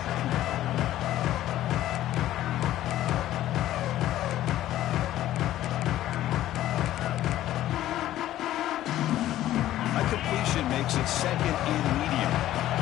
A completion makes it 2nd and medium.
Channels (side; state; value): right; quieter; 13.6 dB